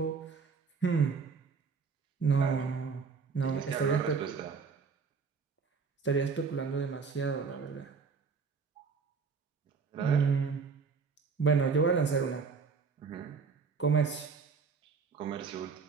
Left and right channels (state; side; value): quieter; left; 5.3 dB